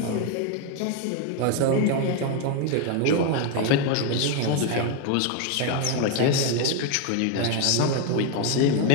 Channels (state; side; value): different; both; correlation 0.01